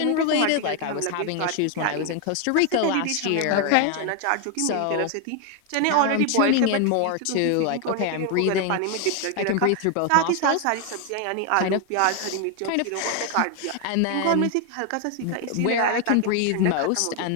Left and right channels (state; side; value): different; both; correlation 0.01